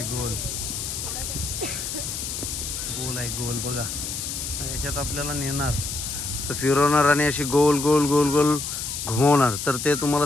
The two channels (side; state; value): left; noise; hiss, 5 dB below the sound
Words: गोल गोल आहे. गोल बघा. याच्यात आपल्याला नेणार, तर फिरवणार आणि अशी गोल गोल गोल गोल घुमवणार. तर ते तुम्हाला